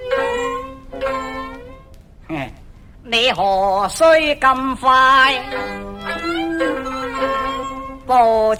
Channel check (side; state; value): both; identical; correlation 1.00